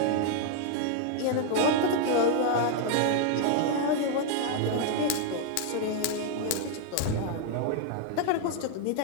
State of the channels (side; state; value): both; different; correlation 0.00